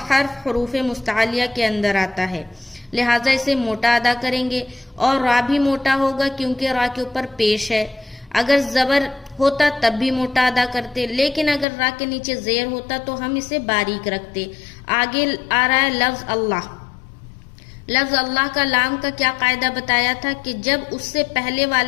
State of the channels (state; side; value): drops out; right; at 11.7 s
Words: حرف حروف مستعلیہ کے اندر آتا ہے، لہٰذا اسے موٹا ادا کریں گے. اور را بھی موٹا ہوگا کیونکہ را کے اوپر پیش ہے. اگر زبر ہوتا تب بھی موٹا ادا کرتے، لیکن اگر را کے نیچے زیر ہوتا تو ہم اسے باریک رکھتے. آگے آ رہا ہے لفظ اللہ. لفظ اللہ کا لام کا کیا قاعدہ بتایا تھا کہ جب اس سے پہلے